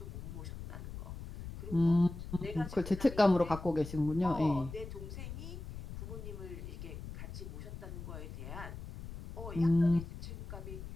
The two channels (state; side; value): noise; left; rumble, 10 dB below the sound